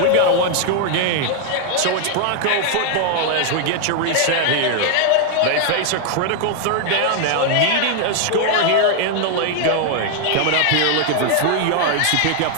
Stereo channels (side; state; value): both; different; correlation 0.00